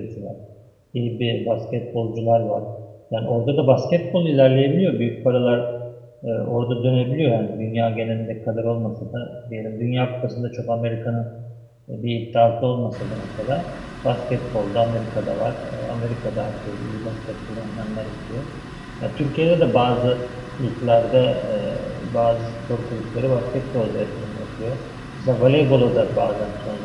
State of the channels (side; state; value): both; identical; correlation 1.00